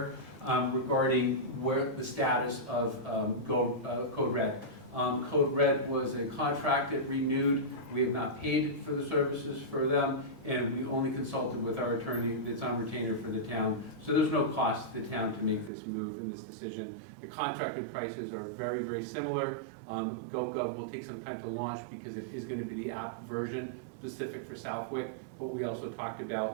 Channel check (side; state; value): left; drops out; at 15.7 s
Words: regarding where the status of Code Red. Code Red was a contract that renewed. We have not paid for the services for them, and we only consulted with our attorney that's on retainer for the town. So there's no cost to the town to make this move and this decision. The contracted prices are very, very similar. GoGov will take some time to launch because it is going to be the app version specific for Southwick, but we also talked